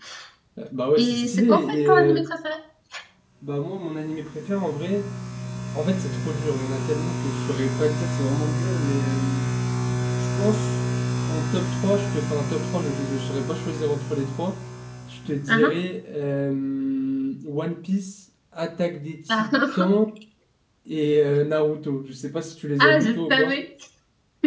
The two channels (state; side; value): identical; both; correlation 1.00